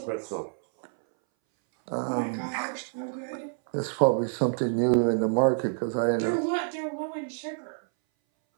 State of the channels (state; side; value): silent; left; 60 dB below the other